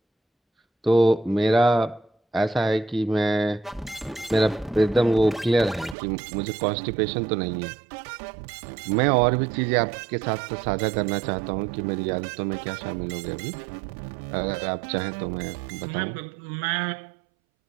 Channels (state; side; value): drops out; left; at 6.0 s